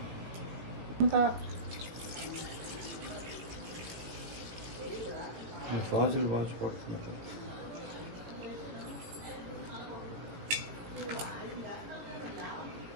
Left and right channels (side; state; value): left; late; 18 ms